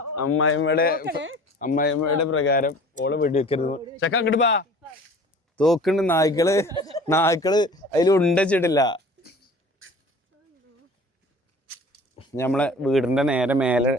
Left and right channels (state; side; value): normal; both; correlation 0.45